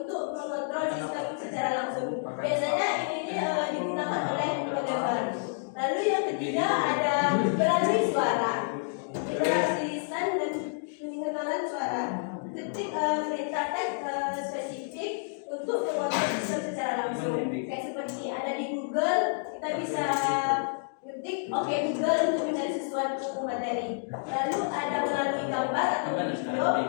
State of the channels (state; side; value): silent; right; digital silence